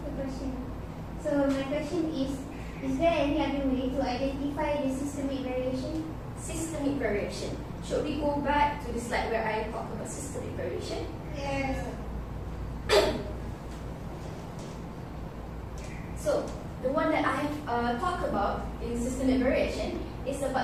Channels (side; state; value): both; identical; correlation 1.00